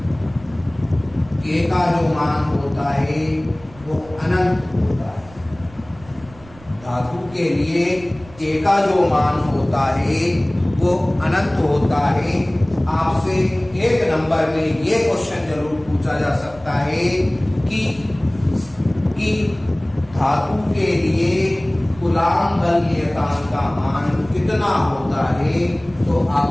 के का जो मान होता है वो अनंत होता है। धातु के लिए के का जो मान होता है वो अनंत होता है। आपसे एक नंबर में ये क्वेश्चन जरूर पूछा जा सकता है कि धातु के लिए कूलॉम बल नियतांक का मान कितना होता है। तो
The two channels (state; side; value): noise; right; rumble, 22 dB below the sound